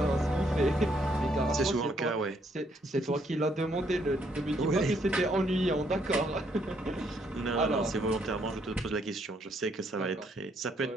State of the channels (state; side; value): normal; both; correlation 0.71